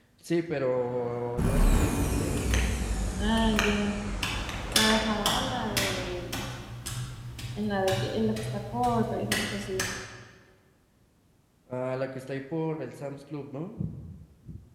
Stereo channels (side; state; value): both; identical; correlation 1.00